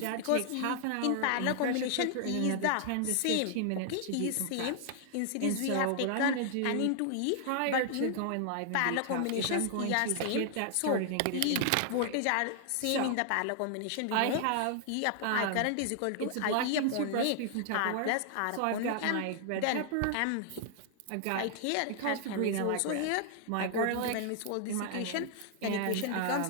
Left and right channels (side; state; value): both; different; correlation 0.00